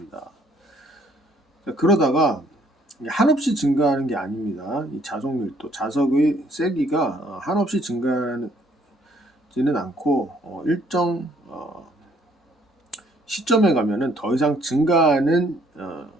자, 그러다가 한없이 증가하는 게 아닙니다. 이 자석 밀도, 자석의 세기가 한없이 증가하지는 않고 일정 시점에 가면은 더 이상 증가하는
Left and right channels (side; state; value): both; normal; correlation 0.64